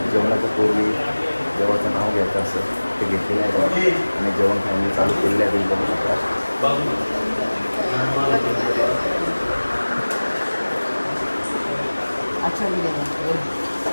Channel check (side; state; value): both; inverted; correlation -1.00